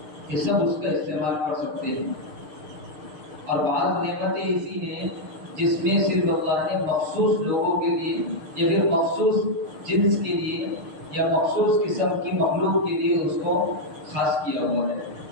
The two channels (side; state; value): left; late; 6.5 ms